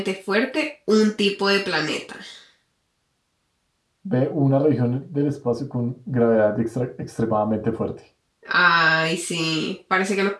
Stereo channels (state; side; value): identical; both; correlation 1.00